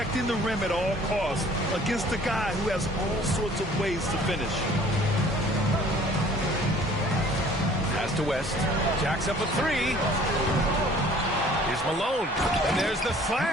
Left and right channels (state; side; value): normal; both; correlation 0.53